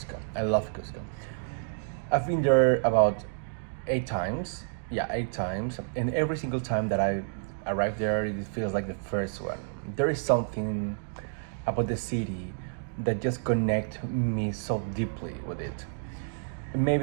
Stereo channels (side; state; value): left; silent; digital silence